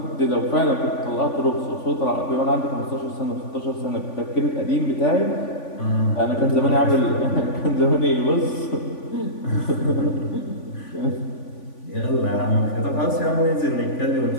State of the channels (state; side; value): late; right; 3.5 ms